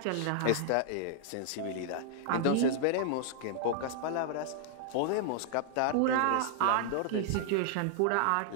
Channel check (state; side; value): different; both; correlation -0.01